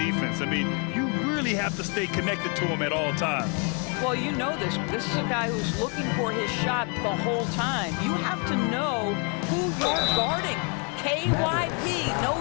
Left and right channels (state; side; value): quieter; right; 36.4 dB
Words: I mean, you really have to stay connected to him at all times. Well, you know this. This is a guy who's looking for his shot the whole time. You have to know who you're guarding. KYP,